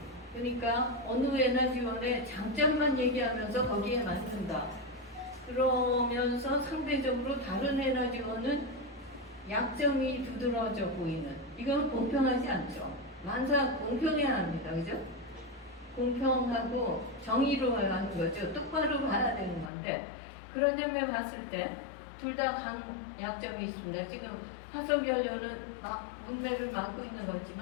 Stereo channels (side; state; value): right; drops out; at 19.7 s